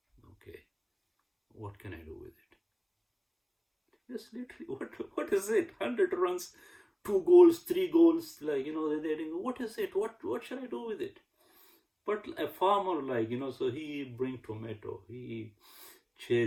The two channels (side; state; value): both; identical; correlation 1.00